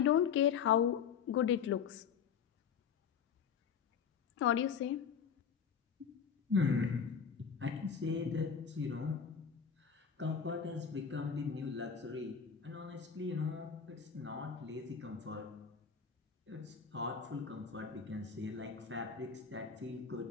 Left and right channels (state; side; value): quieter; right; 6.9 dB